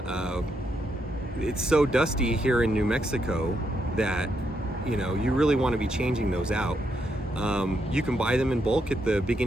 it's so dusty here in New Mexico that you really want to be changing those out. You can buy them in bulk at the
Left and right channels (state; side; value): normal; both; correlation 0.79